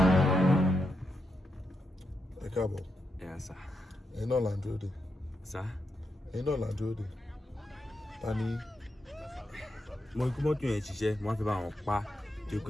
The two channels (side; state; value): both; normal; correlation 0.84